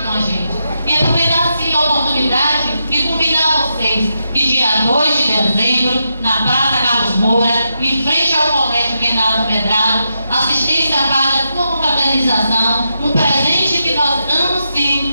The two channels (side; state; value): both; inverted; correlation -0.84